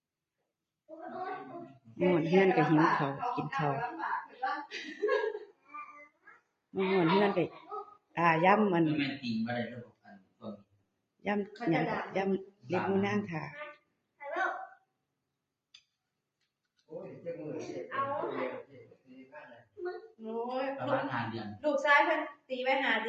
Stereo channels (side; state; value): both; identical; correlation 1.00